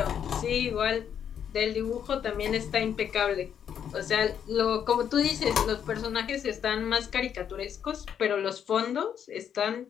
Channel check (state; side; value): quieter; right; 8.5 dB